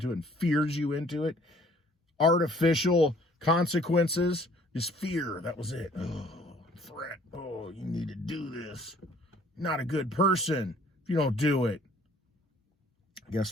it and fears you into it, artificial consequences, just fear, that was it. Oh, threat. Oh, you need to do this. Not a good person if you don't do it.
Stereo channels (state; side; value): normal; both; correlation 0.57